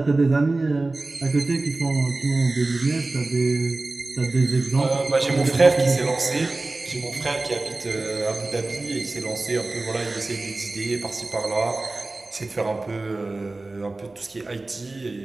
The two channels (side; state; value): left; quieter; 3.2 dB